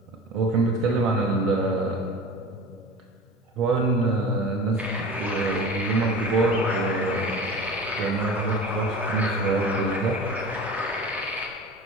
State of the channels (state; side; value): normal; both; correlation 0.36